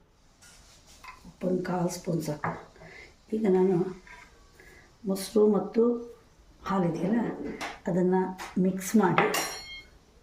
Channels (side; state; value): both; identical; correlation 1.00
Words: ಉಪ್ಪೊಂದು 1/4 ಸ್ಪೂನ್ ಸಾಕು. ಈಗ ನಾನು ಮೊಸರು ಮತ್ತು ಹಾಲಿದೆಯಲ್ಲ ಅದನ್ನು ಮಿಕ್ಸ್ ಮಾಡಿ